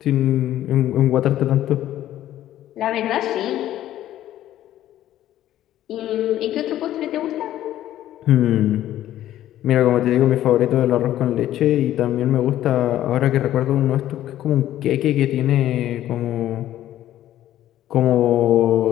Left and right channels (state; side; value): quieter; right; 12.9 dB